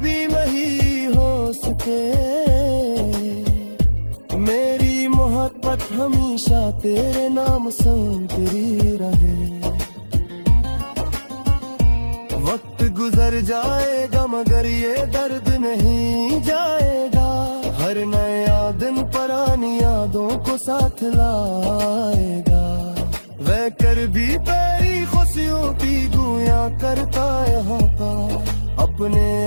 नहीं हो सके, मेरी मोहब्बत हमेशा तेरे नाम सुनती रहे। वक्त गुजर जाएगा मगर ये दर्द नहीं जाएगा, हर नया दिन पुरानी यादों को साथ लाएगा। वह कर भी तेरी खुशियों की गुया करता यहाँ का, अपने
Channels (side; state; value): both; inverted; correlation -1.00